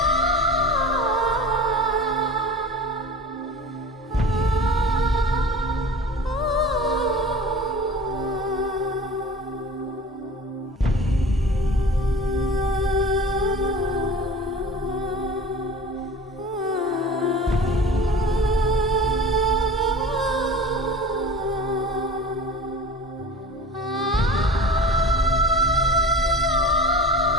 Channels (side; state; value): both; normal; correlation 0.38